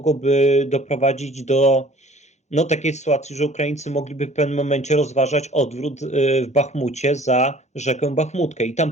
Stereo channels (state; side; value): normal; both; correlation 0.51